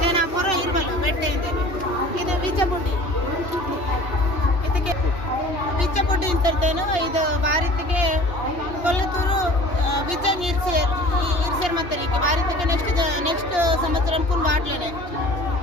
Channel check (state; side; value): late; right; 2.8 ms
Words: నేను ఆ పొర ఇరువలు పెట్టే ಇದು ಬೀಜ ಬುಡ್ಡಿ ಇದಕ್ಕೆ ಇದೇನು ಇದು ಬಾರಿತಿಗೆ ಕೊಲ್ಲತೂರು ಬಿಜ್ಜಂಗ್ ಇರ್ಸೇರ್ ಮತ್ತೆ ಬಾರಿತಿಗೆ ನೆಕ್ಸ್ಟ್ ಸಂವత్సరం ಕುನ್ ಬಾಟ್ಲೇನೆ